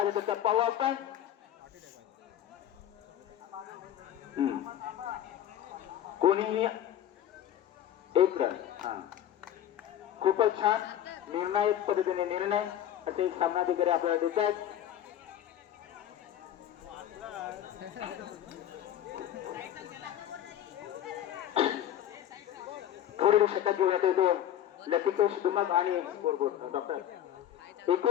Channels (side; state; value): right; quieter; 11.1 dB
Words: होता पाहू आपण. कोणीही एक रन. खूपच छान निर्णायक पद्धतीने निर्णय असे सामनाधिकारी आपल्याला देत आहेत. पुढील षटक घेऊयात येतो लतिकेश दुमक आणि स्कोरबोर्ड डॉक्टर.